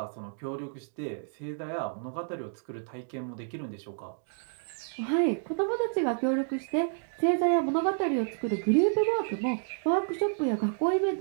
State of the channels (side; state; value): left; silent; digital silence